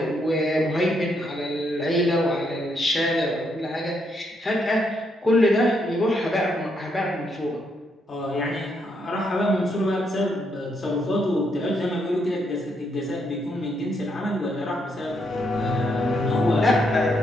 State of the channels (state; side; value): normal; both; correlation 0.76